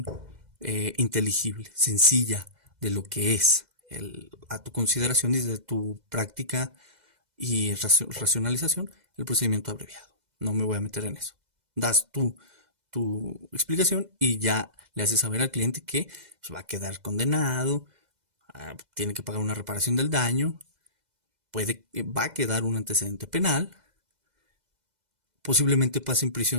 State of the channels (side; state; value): left; late; 2.0 ms